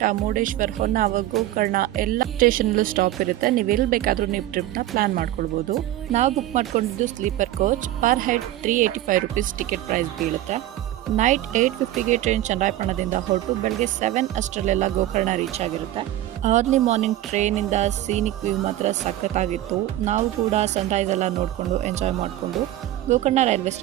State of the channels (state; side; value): quieter; left; 14.2 dB